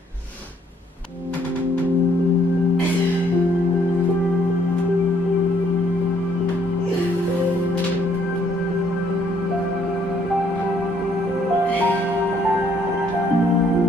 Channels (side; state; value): both; normal; correlation 0.66